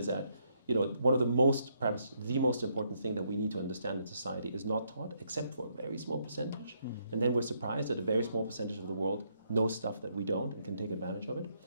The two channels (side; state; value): both; inverted; correlation -0.75